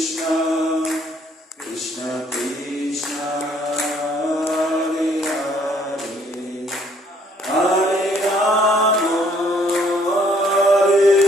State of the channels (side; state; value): both; normal; correlation 0.64